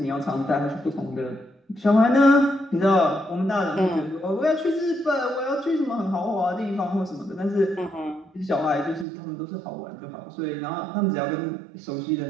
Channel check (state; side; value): drops out; left; at 9.1 s